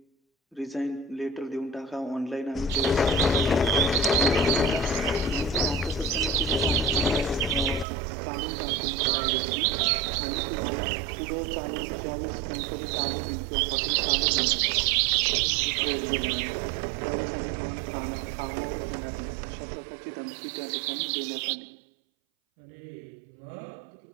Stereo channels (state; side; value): drops out; left; at 7.9 s